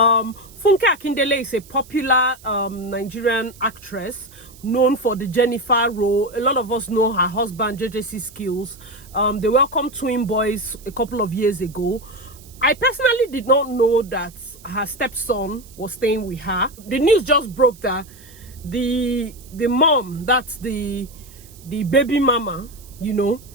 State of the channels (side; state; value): right; noise; hiss, 23 dB below the sound